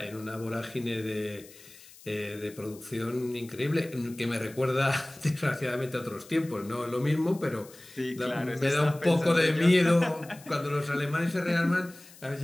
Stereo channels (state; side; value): noise; left; hiss, 21 dB below the sound